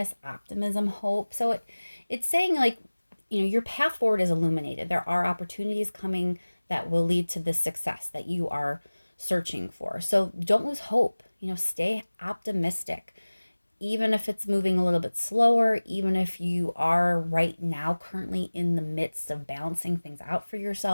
optimism, hope. So it's saying your path forward is illuminated. There are opportunities coming that will lead to the success that you are searching for. So don't lose hope. Stay optimistic. Even if it's moving a little bit slower, even if you are right now currently in the midst of balancing things out for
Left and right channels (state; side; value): inverted; both; correlation -1.00